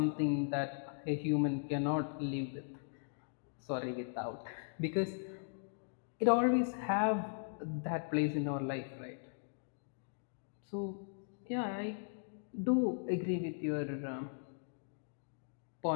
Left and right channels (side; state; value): right; silent; digital silence